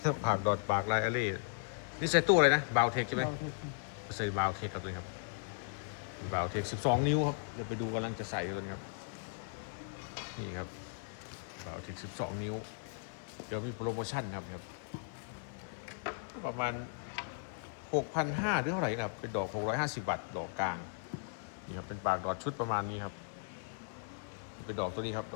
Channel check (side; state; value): right; silent; 53 dB below the other